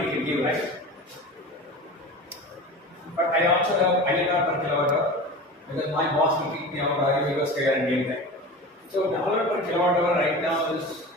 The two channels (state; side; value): normal; both; correlation 0.33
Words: we can give, right? But I also have INR per kilowatt hour because my boss will kick me out, I will go scared and game time. So $1 per kilowatt hour right now is